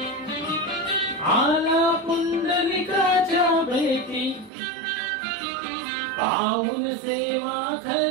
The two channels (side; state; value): left; drops out; at 4.5 s